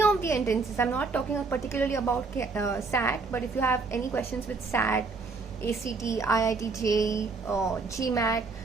of the entrances, I'm not talking particularly about SAT, but if you have any questions with SAT, ACT, IIT, JEE, GMAT,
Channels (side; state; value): left; quieter; 4.2 dB